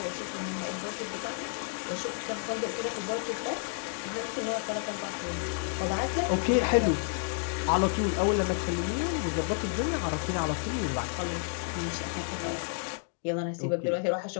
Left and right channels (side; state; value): right; silent; 57 dB below the other